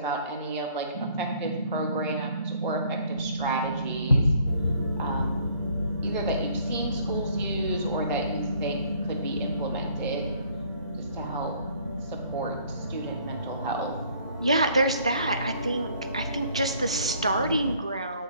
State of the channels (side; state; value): both; inverted; correlation -0.60